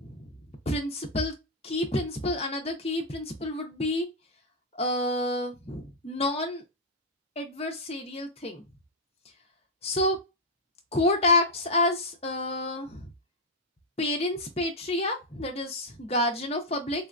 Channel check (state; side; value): normal; both; correlation -0.03